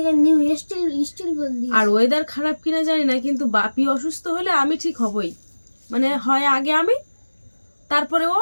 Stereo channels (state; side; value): inverted; both; correlation -1.00